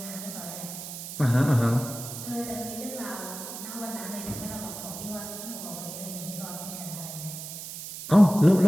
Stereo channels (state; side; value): noise; right; hiss, 9 dB below the sound